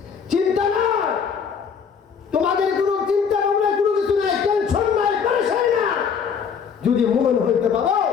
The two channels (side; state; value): right; quieter; 6.6 dB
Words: চিন্তা নাই, তোমাদের কোনো চিন্তা ভাবনা কোনো কিছু নাই, টেনশন নাই, পেরেশানি না। যদি মুমিন হইতে পারো,